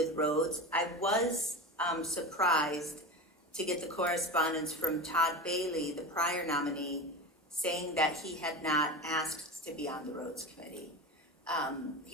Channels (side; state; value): both; normal; correlation 0.26